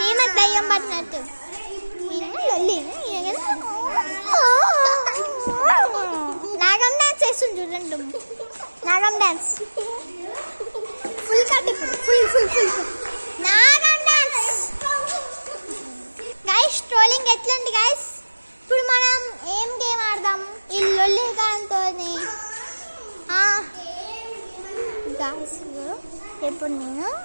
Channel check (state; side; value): inverted; both; correlation -1.00